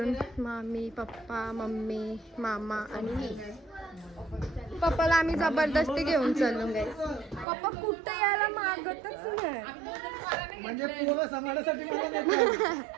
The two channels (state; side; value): drops out; left; at 7.5 s